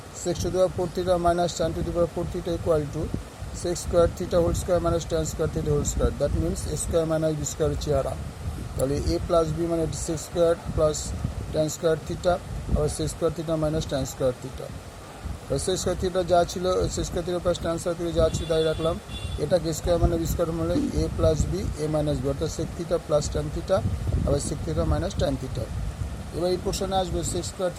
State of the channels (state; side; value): identical; both; correlation 1.00